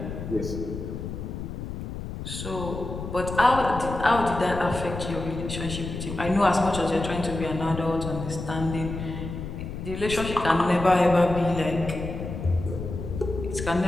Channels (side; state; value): left; noise; rumble, 7 dB below the sound